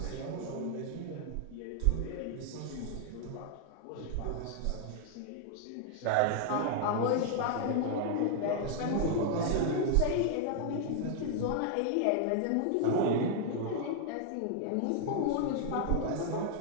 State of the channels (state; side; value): different; both; correlation 0.00